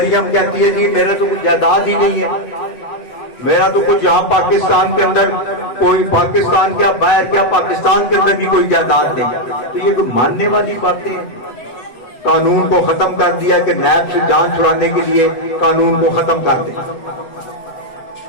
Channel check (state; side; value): late; right; 7.6 ms